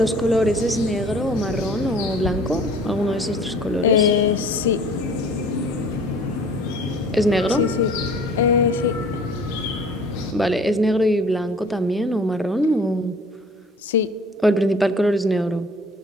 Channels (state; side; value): normal; both; correlation 0.49